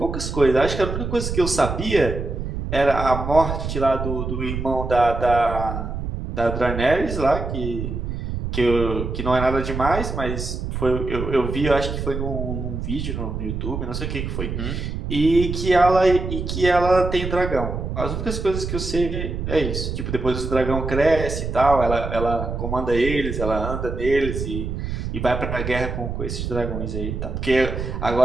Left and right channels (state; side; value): noise; right; rumble, 4 dB below the sound